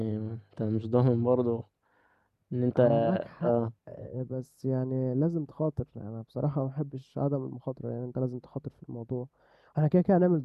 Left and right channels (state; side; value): identical; both; correlation 1.00